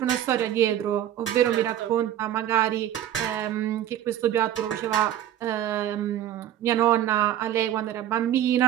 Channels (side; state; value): left; quieter; 11.5 dB